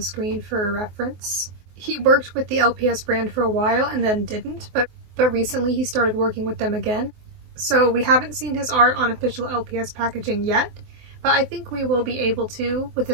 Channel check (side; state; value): left; late; 24 ms